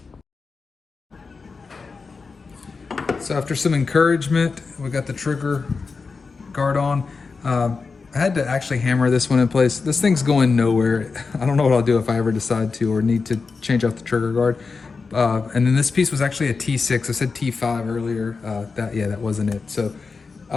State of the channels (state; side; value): quieter; right; 4.6 dB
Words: So after some encouragement, we got the trigger guard on. I had to actually hammer this one in place. This thing's going nowhere. I don't know what I'll do if I ever decide to or need to change out the trigger guard. And then this piece was actually a T6. I said T5 earlier. That wasn't it. So